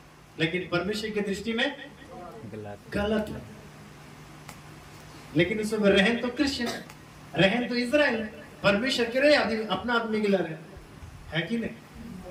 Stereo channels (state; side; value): identical; both; correlation 1.00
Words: लेकिन परमेश्वर की दृष्टि में गलत है लेकिन उसमें रहन तो क्रिश्चियन रहन तो इजराइल परमेश्वर के रहे आदमी अपना आदमी गिला रहे है कि